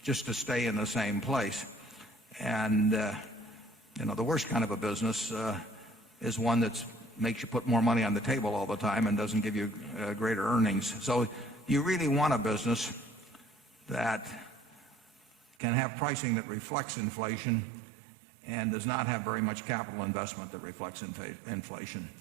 just to stay in the same place. And the worst kind of a business is one that makes you put more money on the table all the time and doesn't give you greater earnings. So you really want a business that can have pricing that reflects inflation and does not have very much capital investment that reflects inflation.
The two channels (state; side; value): drops out; left; at 15.6 s